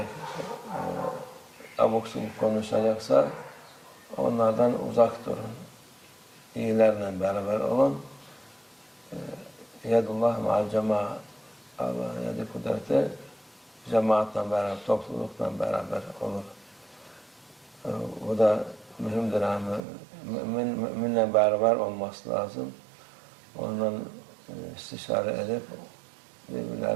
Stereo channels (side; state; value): left; drops out; at 19.8 s